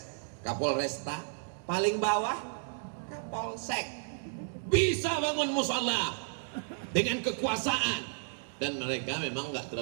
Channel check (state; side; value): silent; left; digital silence